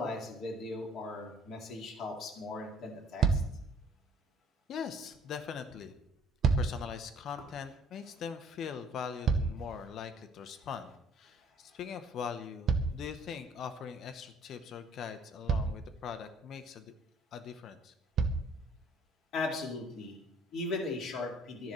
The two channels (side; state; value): both; normal; correlation 0.57